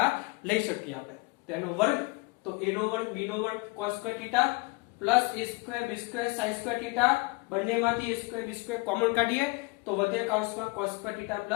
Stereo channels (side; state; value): right; quieter; 25.5 dB